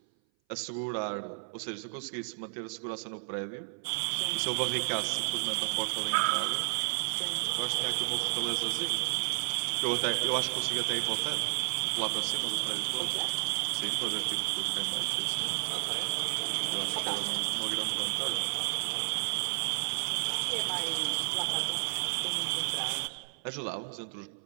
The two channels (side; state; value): left; silent; 56 dB below the other